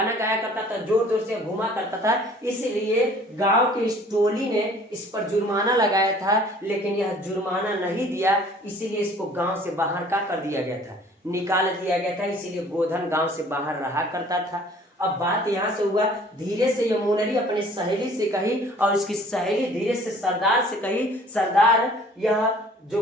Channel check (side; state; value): both; normal; correlation 0.53